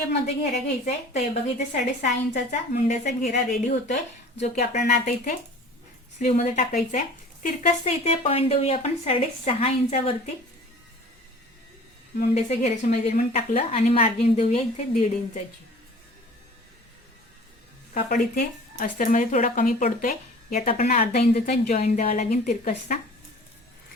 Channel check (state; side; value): normal; both; correlation 0.45